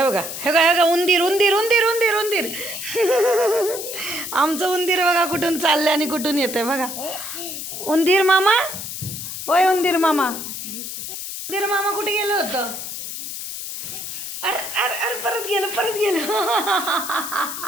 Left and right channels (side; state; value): left; noise; hiss, 7 dB below the sound